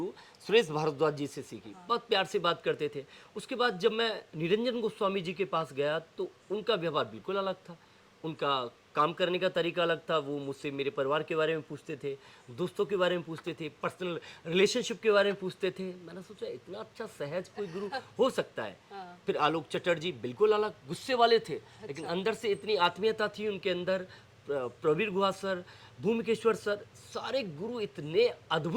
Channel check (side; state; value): both; identical; correlation 1.00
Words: सुरेश भारद्वाज जी से सीखी। बहुत प्यार से बात करते थे। उसके बाद जब मैं निरंजन गोस्वामी जी के पास गया तो उनका व्यवहार बिल्कुल अलग था, उनका काम करने का तरीका अलग था। वो मुझसे मेरे परिवार के बारे में पूछते थे, दोस्तों के बारे में पूछते थे, पर्सनल रिलेशनशिप के बारे में पूछते थे। मैंने सोचा इतना अच्छा सहज कोई गुरु हो सकता है। फिर आलोक चटर्जी बिल्कुल अलग, गुस्से वाले थे लेकिन अंदर से इतनी आत्मीयता थी उनके अंदर। प्रवीर गुहा सर, भूमिकेश्वर सर, सारे गुरु इतने